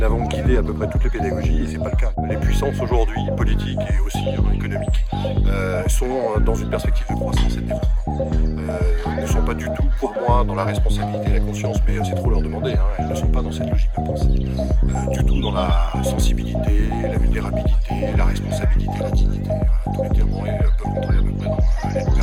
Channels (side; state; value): both; identical; correlation 1.00